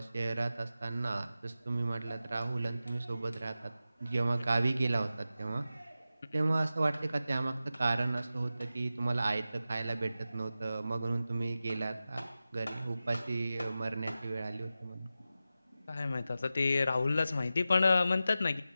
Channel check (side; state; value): both; inverted; correlation -0.93